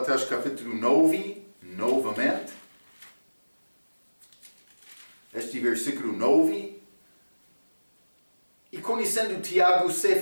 capítulo 9, novamente. Este versículo 9. E conhecendo Tiago,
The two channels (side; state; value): both; inverted; correlation -1.00